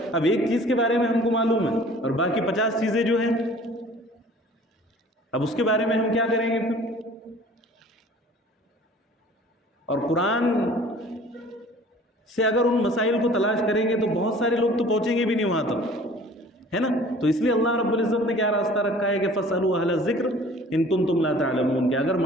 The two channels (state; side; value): normal; both; correlation 0.49